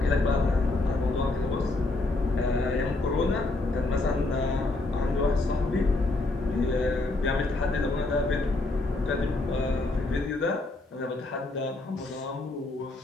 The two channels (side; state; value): right; quieter; 3.0 dB